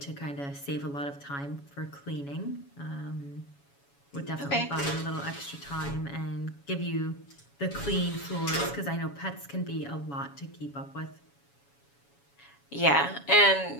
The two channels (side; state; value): right; late; 7.1 ms